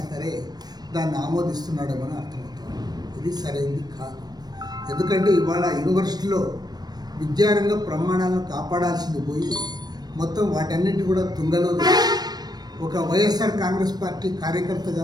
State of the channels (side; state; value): left; late; 0.19 ms